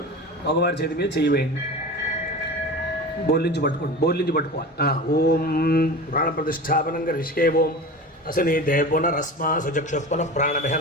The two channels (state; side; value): normal; both; correlation 0.32